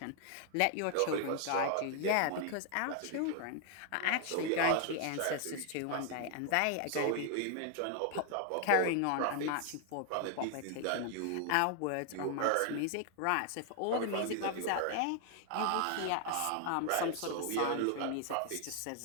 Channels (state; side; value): different; both; correlation 0.00